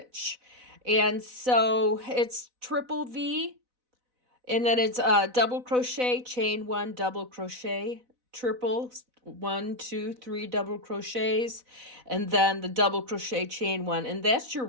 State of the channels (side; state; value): left; late; 4.0 ms